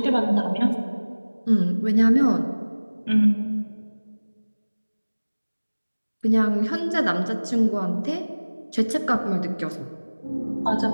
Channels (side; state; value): both; inverted; correlation -1.00